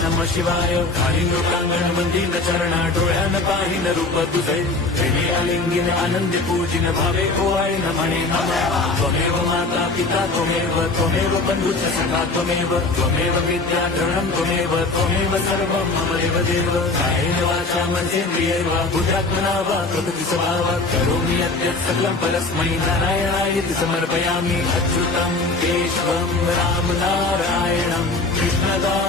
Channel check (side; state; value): right; quieter; 3.4 dB